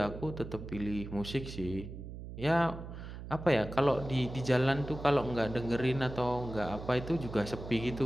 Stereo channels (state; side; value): noise; right; hum, 10 dB below the sound